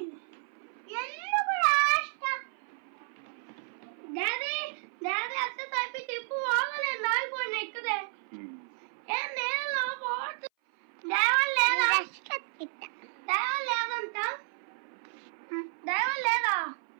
ఎందుకు రాష్ట్రం డాడీ డాడీ అత్త తప్పి తిప్పు పోగలే నాయిపోయిన ఇక్కడే ఏం నేను పోతు దైవం లేదా దైవం లేదంట దైవం లేదా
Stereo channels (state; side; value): silent; left; 57 dB below the other